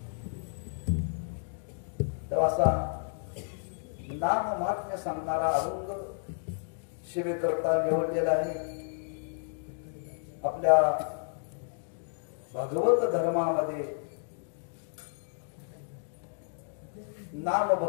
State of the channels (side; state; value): right; silent; digital silence